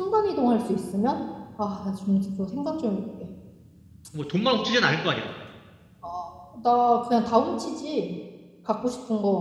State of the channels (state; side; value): identical; both; correlation 1.00